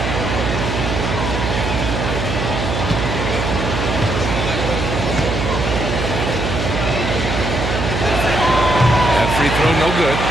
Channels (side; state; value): right; noise; hum, 2 dB below the sound